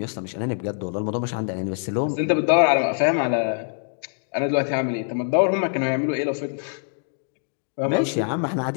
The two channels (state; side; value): silent; right; digital silence